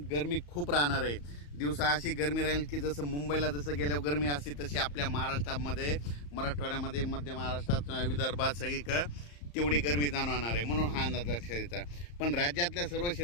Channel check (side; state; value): right; late; 34 ms